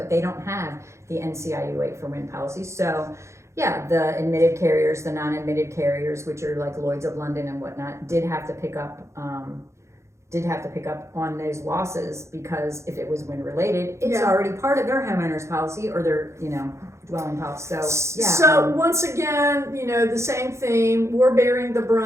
they don't have the NCIU 8 for wind policy. So, yeah, the admitted carriers, the non-admitted carriers, which are like Lloyd's of London and whatnot, did have to pick up on those losses, because if it was wind related, it's already part of their homeowners policy or their dwelling policy. So yeah. So once again, the same theme. We're bearing the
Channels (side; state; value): left; late; 0.14 ms